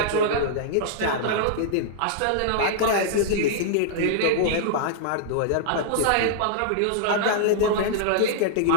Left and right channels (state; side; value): different; both; correlation -0.01